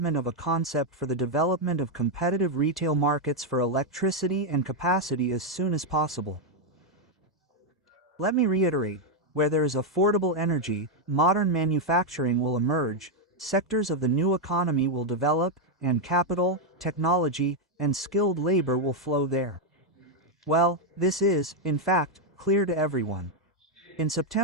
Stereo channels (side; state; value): both; normal; correlation 0.01